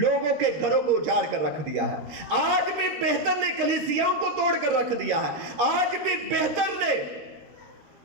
के घरों को उजाड़ कर रख दिया है। आज भी बेहतर ने कलीसियाओं को तोड़ कर रख दिया है। आज भी बेहतर ने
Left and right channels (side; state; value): left; late; 13 ms